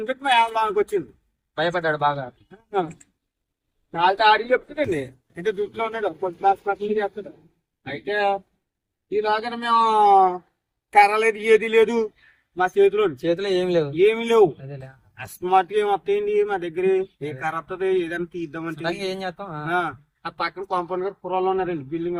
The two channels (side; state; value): both; identical; correlation 1.00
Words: పెట్టి మా లోనికి వచ్చింది. భయపడ్డాడు బాగా. వాళ్ళతో ఆడికి చెప్తుందండి, అంటే దుట్లో ఉన్నాడు, కొద్ది చేస్తాడు. అయితే ఈలాగా మేము కర్ర లేదు, ఏది లేదు మా చేతిలో ఏమి లేవు. అస్మాట్ ఏం వస్తాయండి మా దగ్గర, ఏ కర్ర వస్తుంది ఏదైనా తీద్దామంటే. ఏం చేస్తాం, ఆ పక్కన కాంపౌండ్ గారు పురాలు ఉన్నారండి. బిల్డింగ్